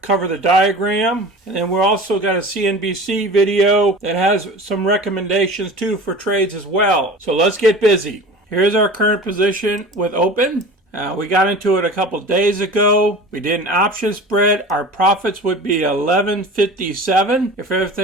cover the diagram. And then we also got a CNBC video that has some recommendations too for trades as well. So let's get busy. Here's our current position with Open. We got into it a couple days ago. We did an option spread. Our profits would be $11.57 if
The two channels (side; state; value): both; normal; correlation 0.38